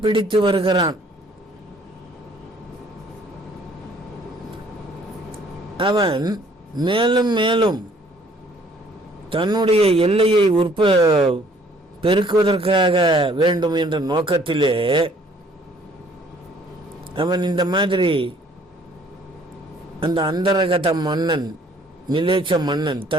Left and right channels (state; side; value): normal; both; correlation 0.59